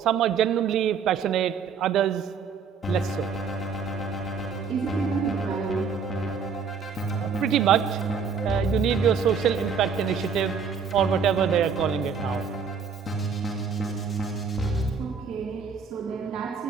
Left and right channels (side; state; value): left; quieter; 6.0 dB